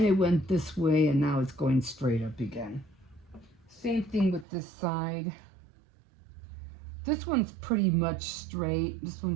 it went this way, and now it's going straight up again. Same thing with this side. This one's pretty much straight. This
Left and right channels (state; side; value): drops out; left; at 4.5 s